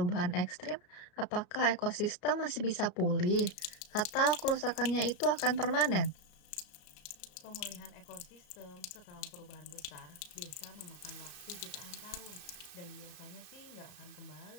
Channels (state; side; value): late; right; 33 ms